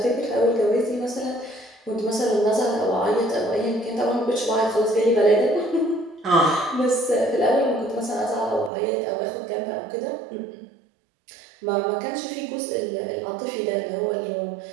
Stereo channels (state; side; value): drops out; left; at 8.7 s